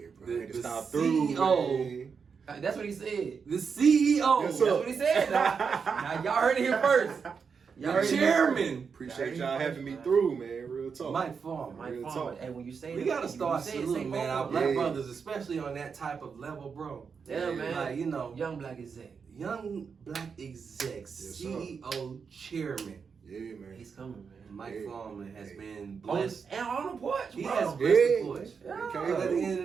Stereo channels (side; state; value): left; quieter; 5.9 dB